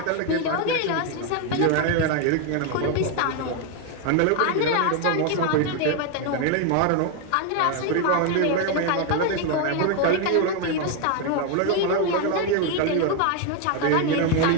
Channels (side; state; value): both; different; correlation 0.01